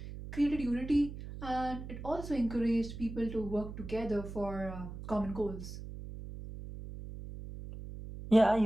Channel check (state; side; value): noise; right; hum, 10 dB below the sound